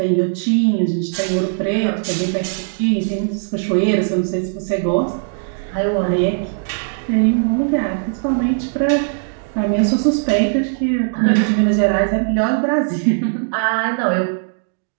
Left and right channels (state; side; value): silent; left; digital silence